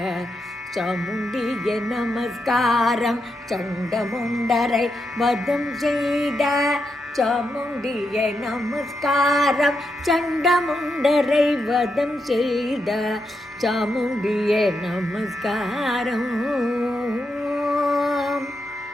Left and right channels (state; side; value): normal; both; correlation 0.84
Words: சாமுண்டியே நமஸ்காரம். சண்டமுண்டரை வதம் செய்த சாமுண்டியே நமஸ்காரம். சண்டமுண்டரை வதம் செய்த சாமுண்டியே நமஸ்காரம்.